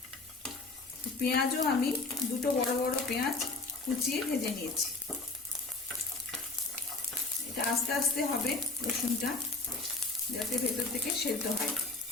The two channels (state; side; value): quieter; right; 3.5 dB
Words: পেঁয়াজও আমি দুটো বড় বড় পেঁয়াজ কুচিয়ে ভেজে নিয়েছি। এটা আস্তে আস্তে হবে রসুনটা, যাতে ভেতর থেকে সেদ্ধ হয়।